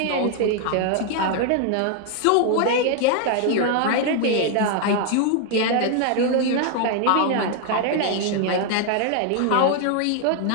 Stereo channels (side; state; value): both; different; correlation 0.00